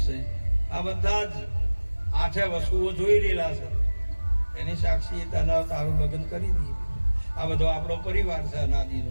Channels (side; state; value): both; inverted; correlation -1.00